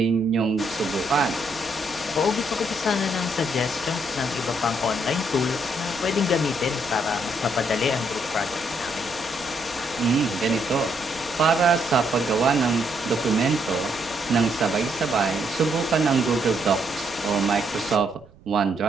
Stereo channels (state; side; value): noise; right; rumble, 24 dB below the sound